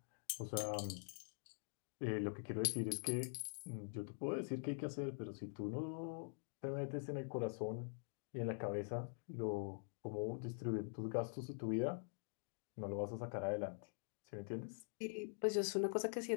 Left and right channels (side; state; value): right; silent; digital silence